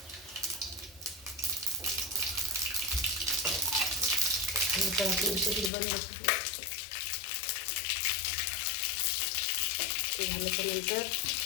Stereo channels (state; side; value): drops out; right; at 5.7 s